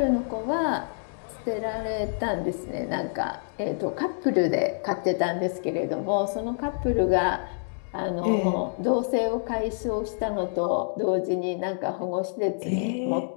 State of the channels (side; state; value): right; silent; digital silence